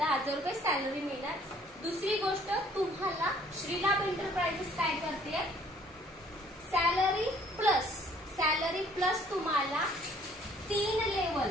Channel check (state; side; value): normal; both; correlation 0.59